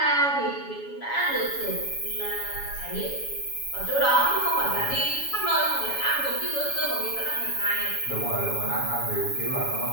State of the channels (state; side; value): late; right; 7.1 ms